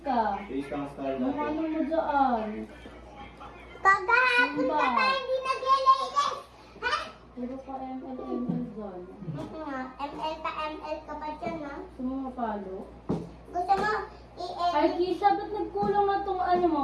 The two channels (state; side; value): identical; both; correlation 1.00